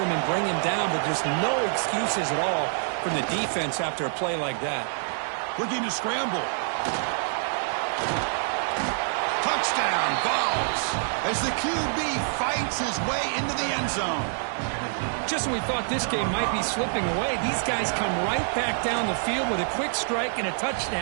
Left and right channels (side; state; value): left; silent; digital silence